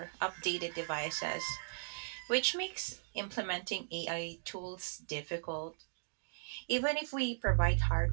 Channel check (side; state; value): left; silent; digital silence